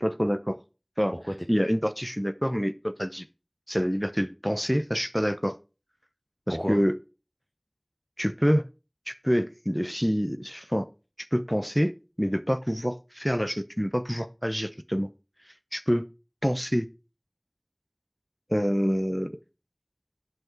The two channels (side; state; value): both; identical; correlation 1.00